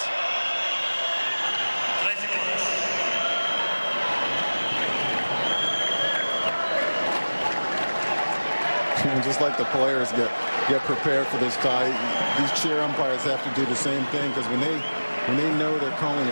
And just like the players get prepared for this tie, these chair umpires have to do the same thing, because when they know they're calling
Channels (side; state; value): both; inverted; correlation -1.00